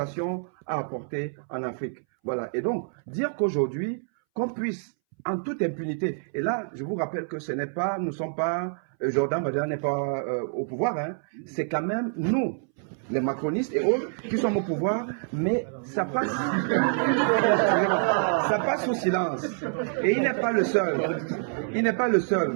a apporté en Afrique. Voilà. Et donc, dire qu'aujourd'hui, qu'on puisse en toute impunité, et là, je vous rappelle que ce n'est pas, nous ne sommes pas, Jordan Bardella n'est pas au pouvoir, hein, c'est quand même nous, les macronistes et autres, qui sommes au pouvoir, mais ça passe, ça passe sous silence. Et il n'est pas le seul. Il n'est pas le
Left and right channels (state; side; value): silent; left; 60 dB below the other